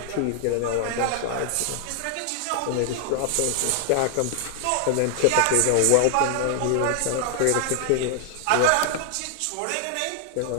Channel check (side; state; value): both; different; correlation 0.00